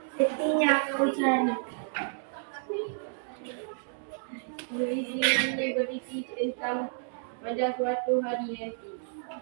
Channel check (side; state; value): left; silent; digital silence